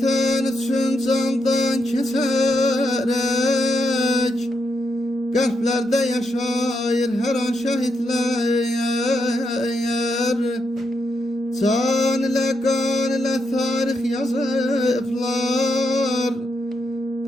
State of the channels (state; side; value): normal; both; correlation 0.82